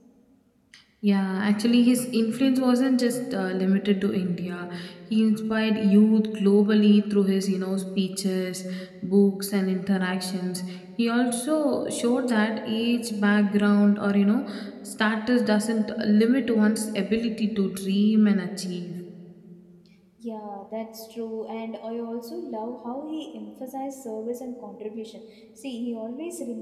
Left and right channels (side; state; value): both; identical; correlation 1.00